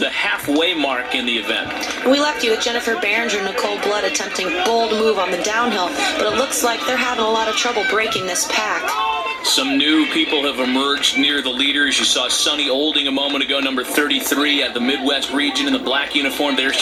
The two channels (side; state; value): both; identical; correlation 1.00